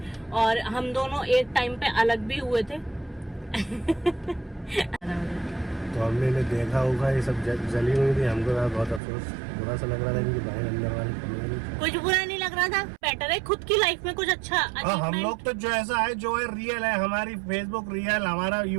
और हम दोनों एक टाइम पे अलग भी हुए थे। तो हमने इन्हें देखा होगा, ये सब जली हुई थी, हमको बहुत अफसोस, बुरा सा लग रहा था इनकी बहन अंदर वाली कमरे में। कुछ बुरा नहीं लग रहा था, बेटर है खुद की लाइफ में कुछ अच्छा। हम लोग तो जो ऐसा है, जो है रियल है, हमारी फेसबुक रियल, हमारा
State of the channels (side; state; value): left; drops out; at 9.0 s